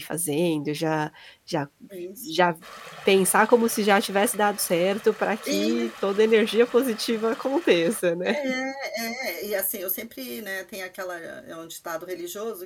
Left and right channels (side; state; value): both; identical; correlation 1.00